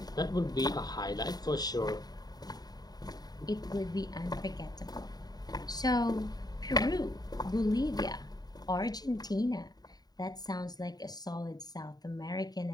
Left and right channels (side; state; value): right; late; 0.19 ms